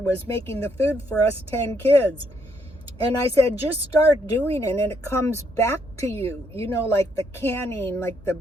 making the food for us 10 kids. And I said, just start doing it and it comes back to you. You know, like the canning, like the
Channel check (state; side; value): normal; both; correlation 0.73